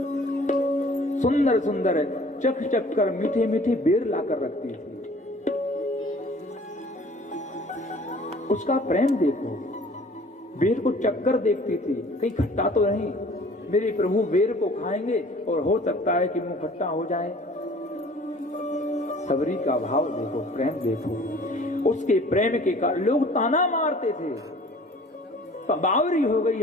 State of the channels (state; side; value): normal; both; correlation 0.50